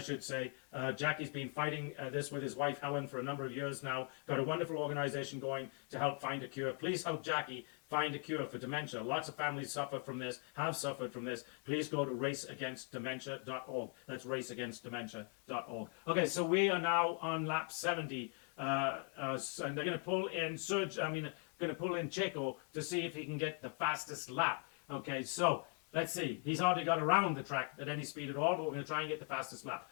should say. Jackie's been fighting this with his wife Helen for a number of years now. Got a wonderful organization going to help find a cure. Please help Jackie find a cure for dementia. Lots of families suffer from this, have suffered from this. Please go to raceagainstdementia.org. That's raceagainstdementia.org. Okay, so we are now on lap 70. And they're going to pull in Checo to see if he can get the fastest lap. Okay, so let's see. He's hardly got around the track at any speed at all, but we're going to try and get the fastest lap.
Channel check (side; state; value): right; quieter; 39.8 dB